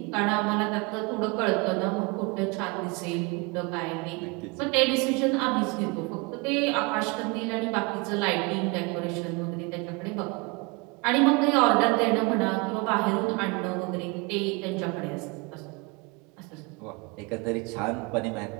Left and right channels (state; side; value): quieter; left; 28.2 dB